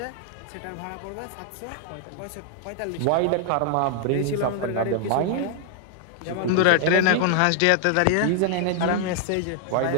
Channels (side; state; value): both; different; correlation 0.00